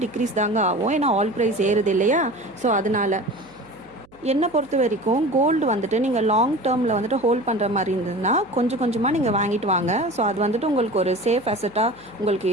டிக்ரீஸ் தாங்க ஆகும். ஏன்னா ஆயில் ப்ரைஸ் ஏறுது இல்லையா. ஸோ அதனால என்னை பொறுத்த வரைக்கும் கோல்டு வந்துட்டு நீங்கள் லாங் டேர்மில் வந்துட்டு ஹோல்ட் பண்ணுற மாதிரி இருந்ததுன்னா கொஞ்சம் கொஞ்சமாக நீங்கள் வாங்கிட்டு வாங்க. ஸோ அது வந்துட்டு உங்களுக்கு ஒரு சேஃப் அசட்டாக உங்களுக்கு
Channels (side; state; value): right; noise; hum, 28 dB below the sound